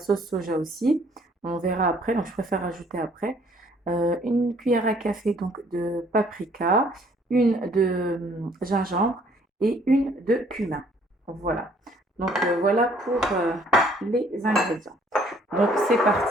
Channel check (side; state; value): both; normal; correlation 0.61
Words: soja aussi. On verra après, donc je préfère rajouter après. Une cuillère à café donc de paprika, une de gingembre et une de cumin. Voilà. Donc, voilà pour les ingrédients. Donc c'est